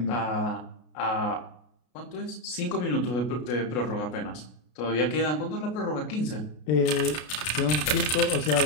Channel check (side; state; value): right; late; 33 ms